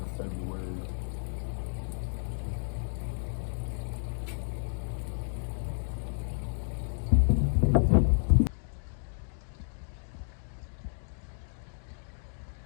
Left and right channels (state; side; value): silent; right; digital silence